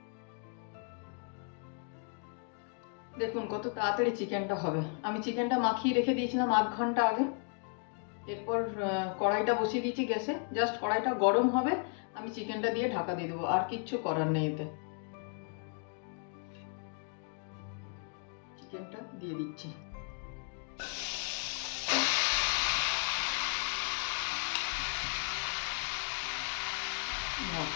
দেখুন কত তাড়াতাড়ি চিকেনটা হবে। আমি চিকেনটা মাখিয়ে রেখে দিয়েছিলাম 8 ঘন্টা আগে। এরপর কড়াইটা বসিয়ে দিয়েছি গ্যাসে, জাস্ট কড়াইটা গরম হবে, আমি চিকেনটা দিয়ে ঢাকা দিয়ে দেবো, আর কিচ্ছু করার নেই। এতে চিকেনটা দিয়ে দিচ্ছি।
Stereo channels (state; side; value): quieter; right; 39.3 dB